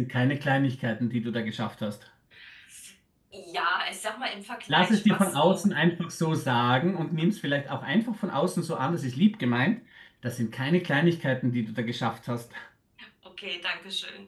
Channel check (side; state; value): both; identical; correlation 1.00